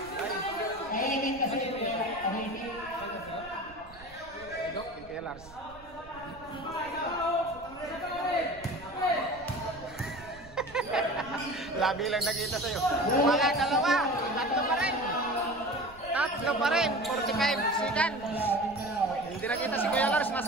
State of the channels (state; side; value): noise; right; rumble, 21 dB below the sound